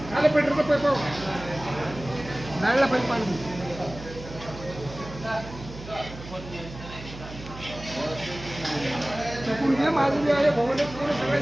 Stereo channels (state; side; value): noise; right; hum, 13 dB below the sound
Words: आले फिल्टरचा पैप नळला पैप पाणी चकून घे माझं बी आहे भोवले पूर्ण